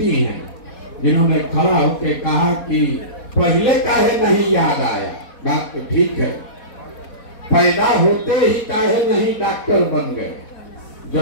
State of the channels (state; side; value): late; right; 4.1 ms